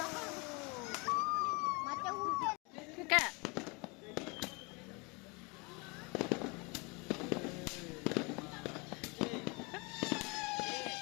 Macam hujan. Kak.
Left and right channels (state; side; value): quieter; right; 28.8 dB